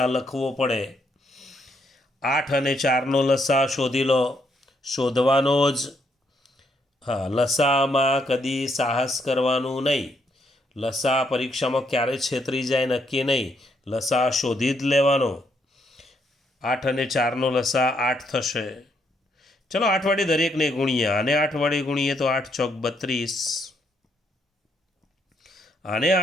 લખવો પડે. 8 અને 4નો લસા શોધી લો. શોધવાનો જ. હા, લસામાં કદી સાહસ કરવાનું નહીં. લસા પરીક્ષામાં ક્યારે છેતરી જાય નક્કી નહીં. લસા શોધી જ લેવાનો. 8 અને 4નો લસા 8 થશે. ચલો 8 વડે દરેકને ગુણીએ. આને 8 વડે ગુણીએ તો 8 ચોક 32. આને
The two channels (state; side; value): normal; both; correlation 0.74